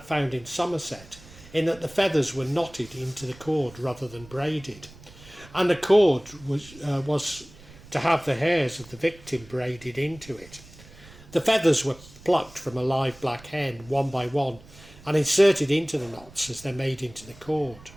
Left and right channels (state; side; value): noise; right; rumble, 21 dB below the sound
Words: found in Somerset in that the feathers were knotted into the cord rather than braided, and the cord was to have the hairs of the victim braided into it. The feathers were plucked from a live black hen one by one and inserted into the knots as they're made into the cord.